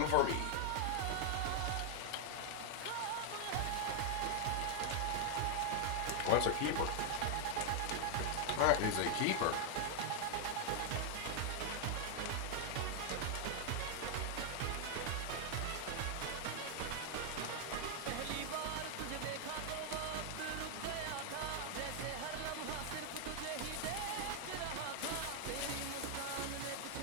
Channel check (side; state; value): both; different; correlation 0.00